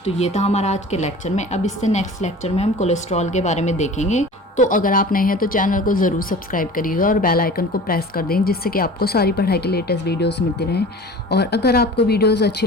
तो ये था हमारा आज के लेक्चर में। अब इससे नेक्स्ट लेक्चर में हम कोलेस्ट्रॉल के बारे में देखेंगे। तो अगर आप नए हैं तो चैनल को ज़रूर सब्सक्राइब करिएगा और बेल आइकन को प्रेस कर दें, जिससे कि आपको सारी पढ़ाई के लेटेस्ट वीडियोस मिलती रहें। और अगर आपको वीडियोस अच्छी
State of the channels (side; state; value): both; normal; correlation 0.40